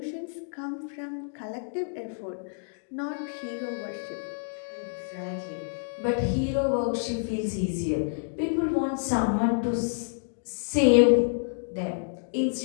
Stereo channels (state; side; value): silent; right; digital silence